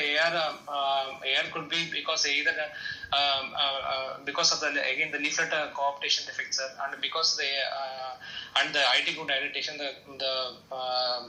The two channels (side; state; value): both; identical; correlation 1.00